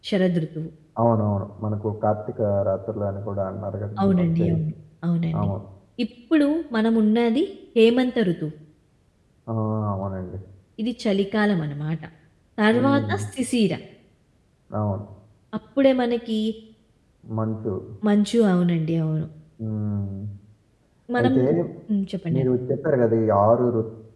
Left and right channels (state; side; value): identical; both; correlation 1.00